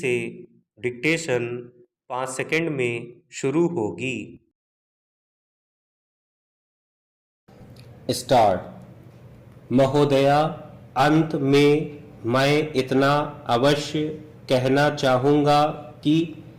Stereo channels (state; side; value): identical; both; correlation 1.00